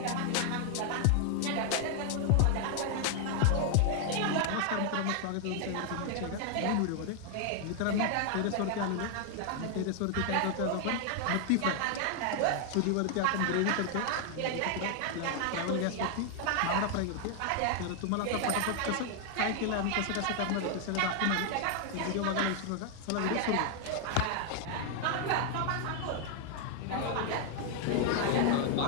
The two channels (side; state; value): both; different; correlation 0.00